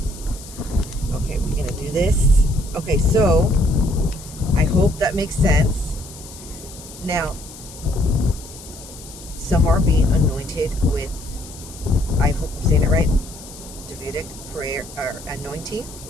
we're gonna do this. Okay, so I hope that makes sense. Now, some are being anointed with, I hope I'm saying it right, Davidic prayer or anointing,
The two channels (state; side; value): noise; left; hiss, 17 dB below the sound